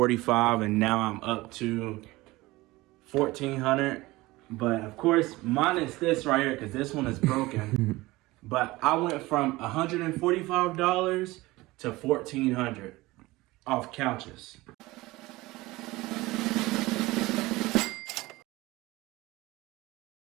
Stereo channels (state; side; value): quieter; left; 20.1 dB